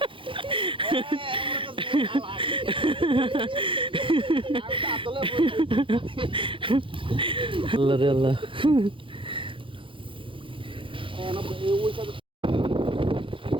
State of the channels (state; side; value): late; left; 0.25 ms